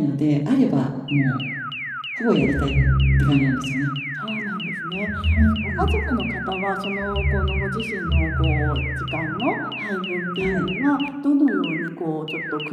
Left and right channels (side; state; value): both; identical; correlation 1.00